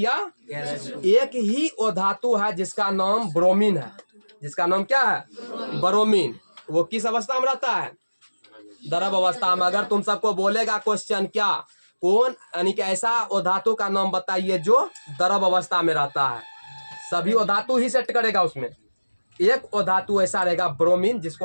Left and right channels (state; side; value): inverted; both; correlation -1.00